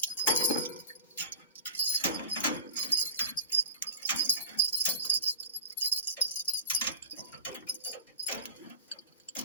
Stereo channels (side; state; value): both; inverted; correlation -0.35